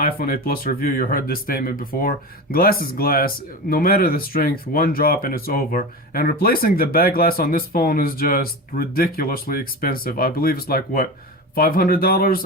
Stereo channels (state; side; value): normal; both; correlation 0.26